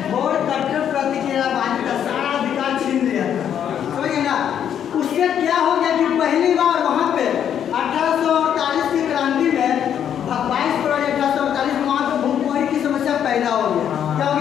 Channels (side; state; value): right; quieter; 9.2 dB